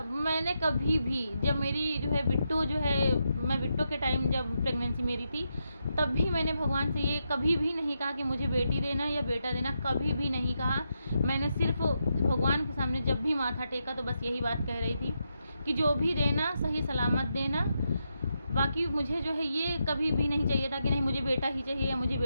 मैंने कभी भी जब मेरी जो है बिट्टू जो है, मैं बिट्टू के टाइम जब प्रेगनेंसी मेरी थी, तब भी मैंने भगवान से ये कभी भी नहीं कहा कि मुझे बेटी देना या बेटा देना, कभी भी नहीं कहा। मैंने सिर्फ भगवान के सामने जब भी माथा टेका तो बस यही बात कह रही थी कि जो भी देना सही सलामत देना। बाकी मुझे जो है ये कभी भी नहीं चाहिए था कि नहीं मुझे बेटा ही चाहिए या मुझे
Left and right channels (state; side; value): inverted; both; correlation -0.84